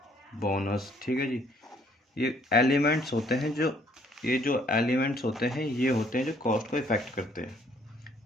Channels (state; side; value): normal; both; correlation 0.64